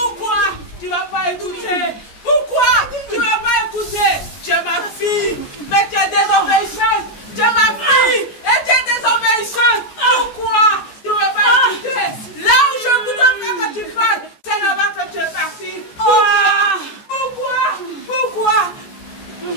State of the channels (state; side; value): late; right; 14 ms